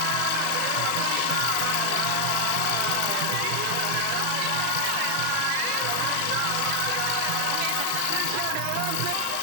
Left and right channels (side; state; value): both; different; correlation 0.00